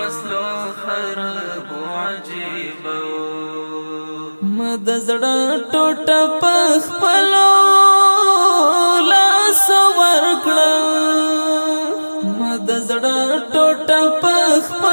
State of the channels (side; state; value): both; inverted; correlation -1.00